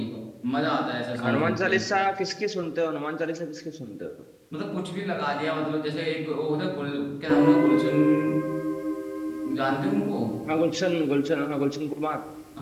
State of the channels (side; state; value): both; identical; correlation 1.00